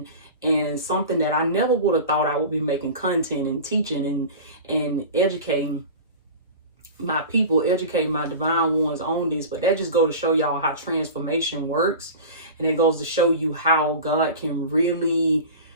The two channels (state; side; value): inverted; both; correlation -0.34